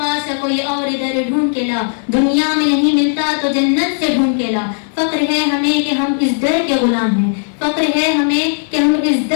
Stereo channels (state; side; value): silent; right; digital silence